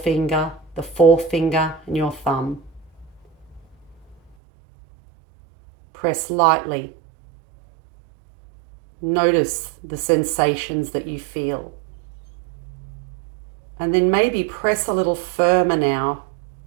and your thumb. Press lightly. Notice the sensations that you feel. And then maybe press a little firmer now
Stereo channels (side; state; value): left; drops out; at 4.4 s